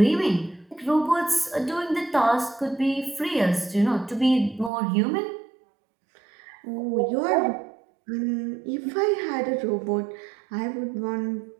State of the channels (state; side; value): drops out; left; at 4.7 s